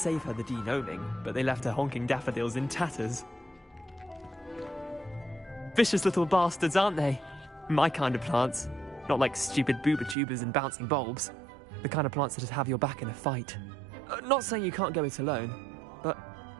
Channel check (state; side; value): drops out; left; at 10.2 s